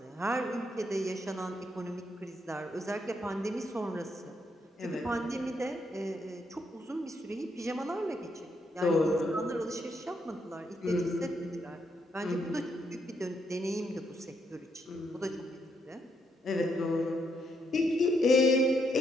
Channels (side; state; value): both; normal; correlation 0.77